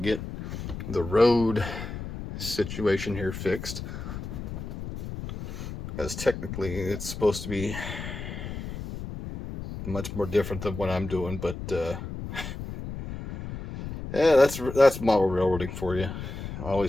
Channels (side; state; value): left; noise; rumble, 8 dB below the sound